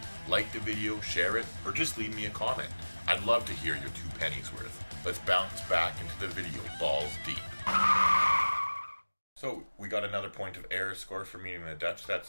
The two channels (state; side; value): inverted; both; correlation -1.00